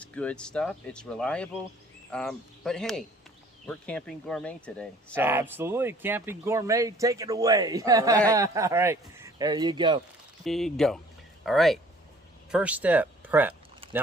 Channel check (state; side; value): normal; both; correlation 0.54